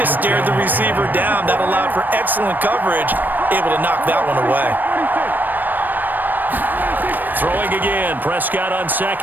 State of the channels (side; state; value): left; late; 0.090 ms